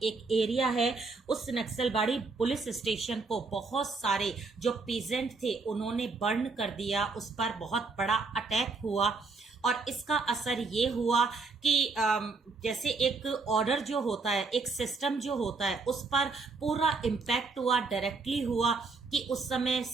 एक एरिया है, उस नक्सलबाड़ी पुलिस स्टेशन को बहुत सारे जो पीजेंट थे उन्होंने बर्न कर दिया, उस पर बहुत बड़ा अटैक हुआ। और इसका असर ये हुआ कि जैसे एक ऑर्डर जो होता है, एक सिस्टम जो होता है, उस पर पूरा इम्पैक्ट हुआ, डायरेक्टली हुआ कि उस समय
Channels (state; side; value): quieter; left; 4.1 dB